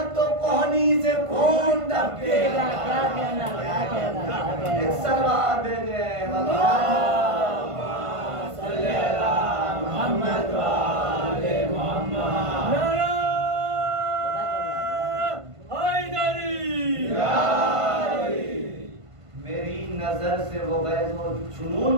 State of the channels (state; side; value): late; left; 1.5 ms